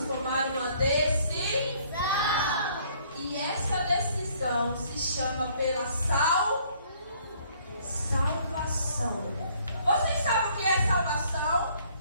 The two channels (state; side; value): inverted; both; correlation -0.62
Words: tomar uma decisão. E essa decisão se chama pela salvação. Vocês sabem o que é salvação?